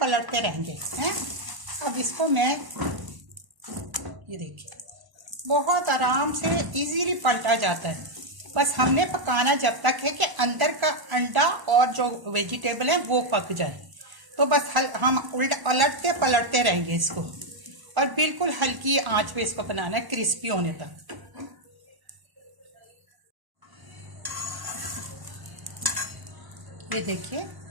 रहेंगे हैं। अब इसको मैं, ये देखिए, बहुत आराम से इजीली पलटा जाता है। बस हमने पकाना जब तक है कि अंदर का अंडा और जो वेजिटेबल है वो पक जाए। तो बस हम पलटते पलटते रहेंगे इसको और बिल्कुल हल्की आंच पे इसको बनाना है, क्रिस्पी होने तक। ये देखिए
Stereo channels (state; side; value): late; left; 1.0 ms